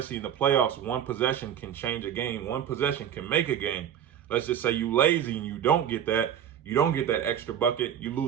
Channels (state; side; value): quieter; left; 9.5 dB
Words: in the playoffs, one possession can change a game. One possession can make a game. Let's just say you lazy and you don't get that extra bucket, you